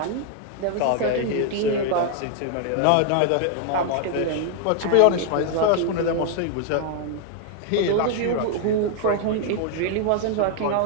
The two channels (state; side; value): different; both; correlation 0.00